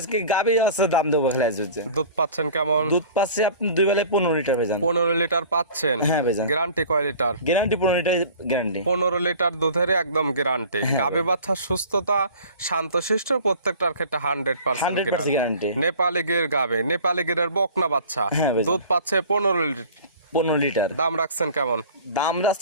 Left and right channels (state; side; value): inverted; both; correlation -0.44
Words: গাভী আছে, দাম দেবো খালি আজ হচ্ছে। দুধ পাচ্ছেন কেমন? দুধ পাচ্ছি আপনি 2 বেলায় 15 লিটার ভাইজান। 15 লিটার পাচ্ছেন। হ্যাঁ ভাইজান। গ্যারান্টি কয় litre? Guarantee 15 litre guarantee. 15 litre দুধের একদম গ্যারান্টি। গাভী বাচ্চার সুস্থতা, শান্তশিষ্ট, প্রত্যেকটার ক্ষেত্রে 100% 100% গ্যারান্টি। নেপালি গির গাভী, নেপালি গিরের বকনা বাচ্চা, হ্যাঁ ভাইজান। দুধ পাচ্ছে 15 লিটার। 15 লিটার। দাম রাখছেন কেমন? দাম